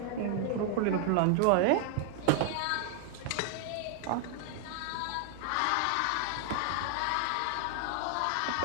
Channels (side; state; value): both; different; correlation 0.00